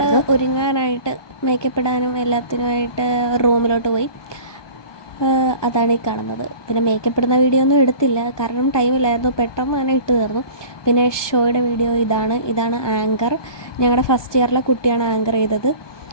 ഒരുങ്ങാനായിട്ട് മേക്കപ്പ് ഇടാനും എല്ലാത്തിനുമായിട്ട് റൂമിലോട്ട് പോയി. അതാണ് ഈ കാണുന്നത്. പിന്നെ മേക്കപ്പ് ഇടുന്ന വീഡിയോ ഒന്നും എടുത്തില്ല, കാരണം ടൈമില്ലായിരുന്നു, പെട്ടെന്ന് തന്നെ ഇട്ട് തീർന്നു. പിന്നെ ഷോയുടെ വീഡിയോ ഇതാണ് ആങ്കർ. ഞങ്ങളുടെ ഫസ്റ്റ് ഇയറിലെ കുട്ടിയാണ് ആങ്കർ ചെയ്തത്.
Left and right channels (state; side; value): late; right; 1.2 ms